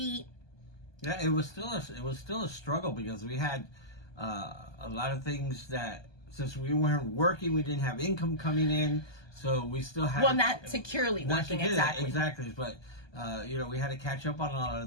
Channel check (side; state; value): right; late; 1.2 ms